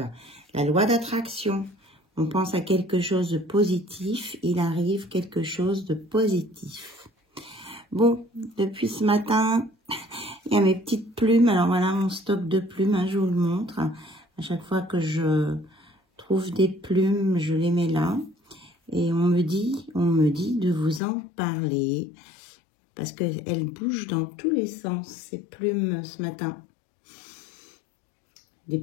La loi d'attraction. On pense à quelque chose de positif, il arrive quelque chose de positif. Bon, depuis ce matin, il y a mes petites plumes. Alors voilà mon stock de plumes, hein, je vous le montre. À chaque fois que je trouve des plumes, je les mets là. Et on me dit de vous en parler. Parce qu'elles bougent dans tous les sens, ces plumes ce matin. Des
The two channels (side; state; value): right; drops out; at 21.0 s